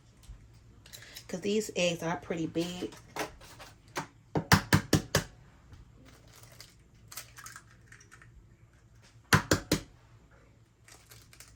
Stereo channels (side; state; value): both; identical; correlation 1.00